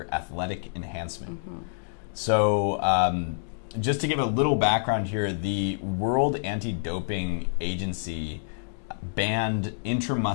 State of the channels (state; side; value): silent; right; digital silence